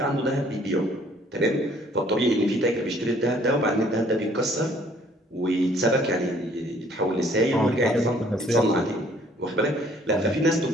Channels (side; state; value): both; normal; correlation 0.60